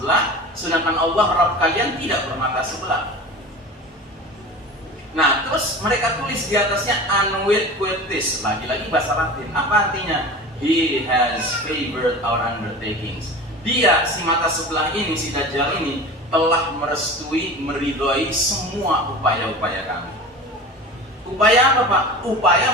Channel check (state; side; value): normal; both; correlation 0.35